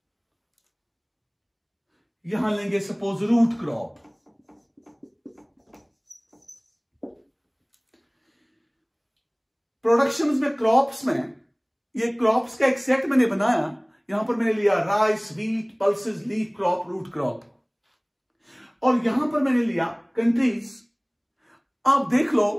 यहां लेंगे सपोज रूट क्रॉप। प्रोडक्शंस में, क्रॉप्स में, ये क्रॉप्स का एक सेट मैंने बनाया। यहां पर मैंने लिया rice, wheat, pulses, leaf crop, root crop. और यहां पर मैंने लिया कंट्रीज। आप देख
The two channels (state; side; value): identical; both; correlation 1.00